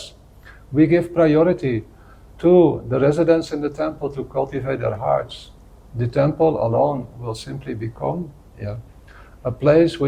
we give priority to the residents in the temple to cultivate their hearts, the temple alone will simply become a place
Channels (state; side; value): identical; both; correlation 1.00